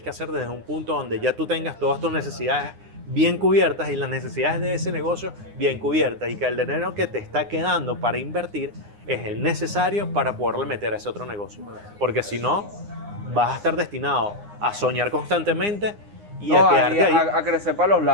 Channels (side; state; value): left; late; 9.7 ms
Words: hacer desde un punto donde ya tú tengas todas tus necesidades bien cubiertas y las necesidades de ese negocio bien cubiertas y que el dinero que te está quedando para invertir es el necesario para poderle meter a ese otro negocio. Porque si no, vas a estar destinado a soñar constantemente y a quedarte ahí. A crecer para los